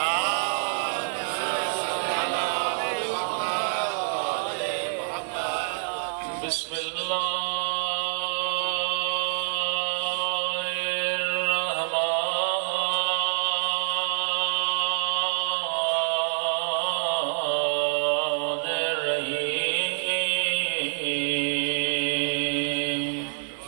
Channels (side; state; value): left; silent; digital silence